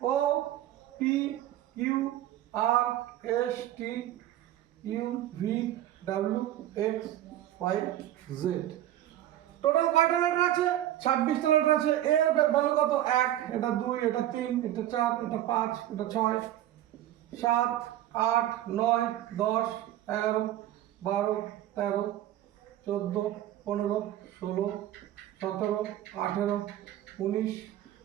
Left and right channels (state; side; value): quieter; left; 13.1 dB